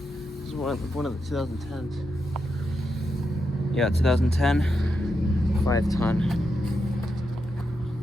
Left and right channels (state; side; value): normal; both; correlation 0.85